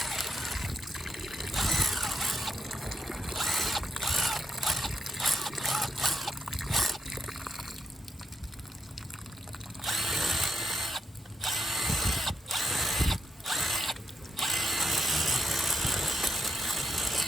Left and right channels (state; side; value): normal; both; correlation 0.84